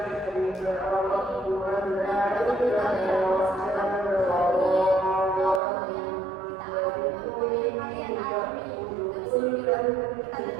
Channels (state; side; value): drops out; left; at 5.6 s